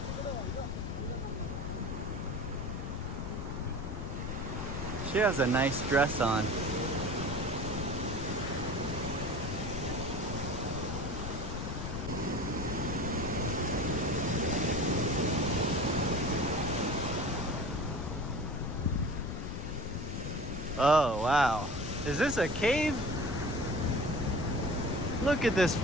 She has a nice dress on. Oh, wow. Is this a cave? Look at this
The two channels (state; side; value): noise; left; rumble, 4 dB below the sound